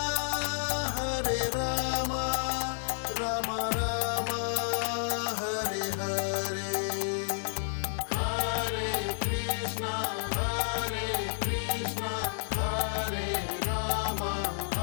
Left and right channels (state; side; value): silent; right; digital silence